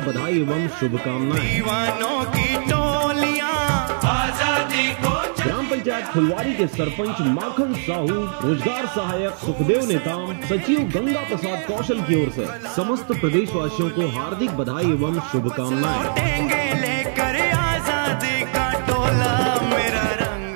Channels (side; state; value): left; silent; digital silence